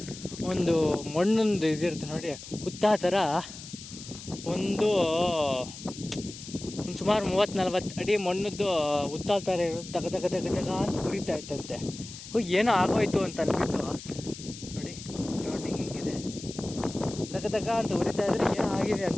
ಒಂದು ಮಣ್ಣೊಂದು ಇದಿರುತ್ತೆ ನೋಡಿ, ಹುತ್ತ ಥರ ಒಂದು ಸುಮಾರು 30-40 ಅಡಿ ಮಣ್ಣದ್ದು ಹುತ್ತ ಥರ ಇರೋದು ದಗ ದಗ ದಗ ದಗ ಅಂತ ಉರಿತಾ ಇತ್ತಂತೆ. ಏನೋ ಆಗೋಯ್ತು ಅಂತ ಅಂದ್ಬಿಟ್ಟು ನೋಡಿ, ಸರೌಂಡಿಂಗ್ ಹೆಂಗಿದೆ, ದಗ ದಗ ಅಂತ ಉರಿತಾ ಇದ್ರೆ ಏನೋ ಆಗಿದೆ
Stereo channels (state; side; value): noise; left; hiss, 14 dB below the sound